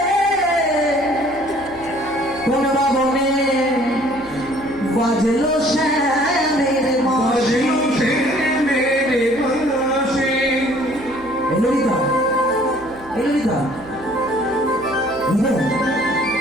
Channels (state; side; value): noise; right; hum, 21 dB below the sound